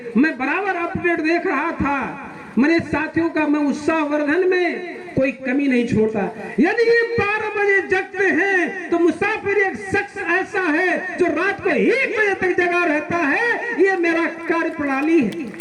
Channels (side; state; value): both; identical; correlation 1.00